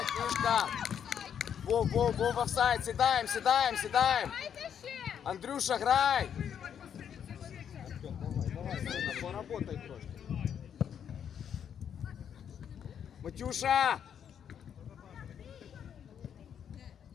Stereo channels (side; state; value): right; quieter; 8.4 dB